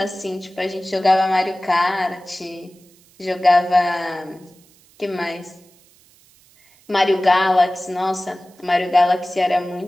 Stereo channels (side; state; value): right; noise; hiss, 30 dB below the sound